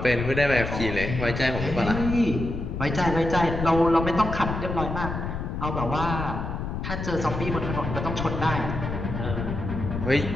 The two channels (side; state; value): left; noise; rumble, 4 dB below the sound